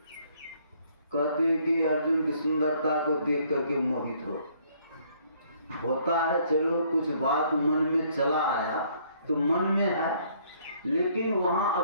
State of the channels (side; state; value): both; inverted; correlation -0.64